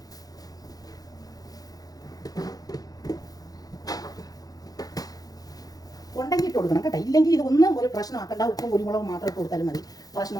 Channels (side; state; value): right; late; 0.18 ms